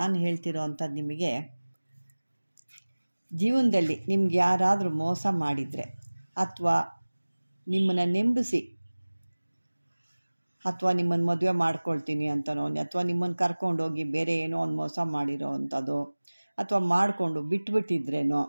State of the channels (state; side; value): inverted; both; correlation -1.00